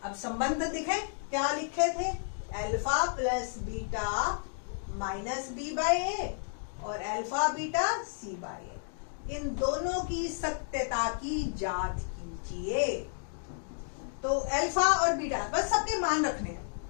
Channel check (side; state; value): right; silent; digital silence